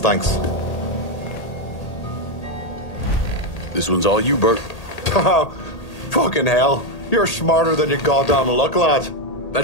This one's all you, Bert. Fucking hell. You're smarter than you goddamn look, lad.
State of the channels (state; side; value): late; right; 1.8 ms